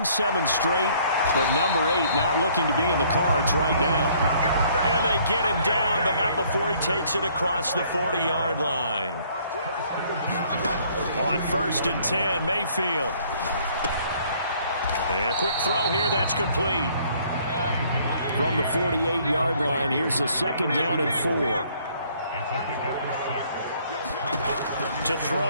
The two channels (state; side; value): inverted; both; correlation -0.61